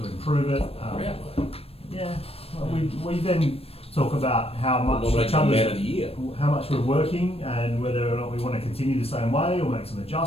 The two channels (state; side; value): late; right; 0.28 ms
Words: improve it. Yeah. Well, we then talk about how much Nominate the man of the year. how much we're working, and whether or not we want to continue the same way or make some